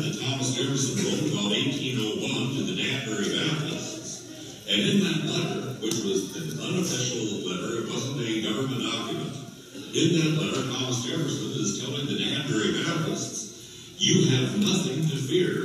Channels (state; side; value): identical; both; correlation 1.00